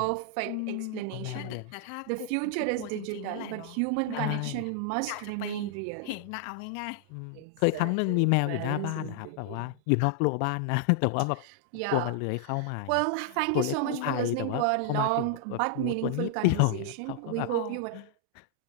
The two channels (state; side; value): different; both; correlation -0.01